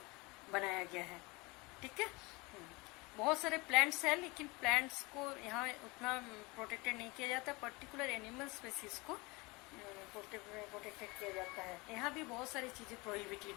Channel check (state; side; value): quieter; right; 25.3 dB